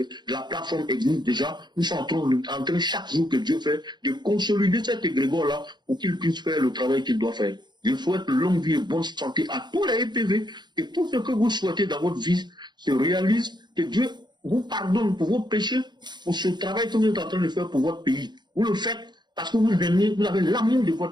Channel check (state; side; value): late; left; 0.21 ms